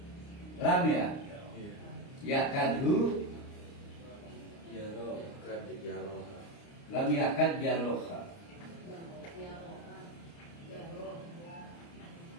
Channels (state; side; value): late; right; 29 ms